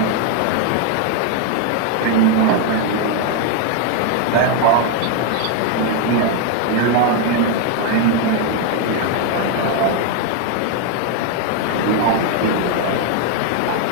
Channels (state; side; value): different; both; correlation 0.01